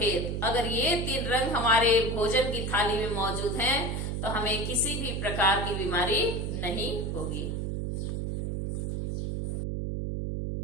अगर ये 3 रंग हमारे भोजन की थाली में मौजूद हैं तो हमें किसी भी प्रकार की बीमारी नहीं होगी।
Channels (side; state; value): right; noise; hum, 2 dB below the sound